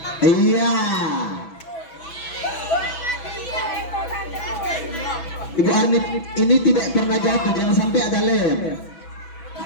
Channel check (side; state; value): right; late; 6.1 ms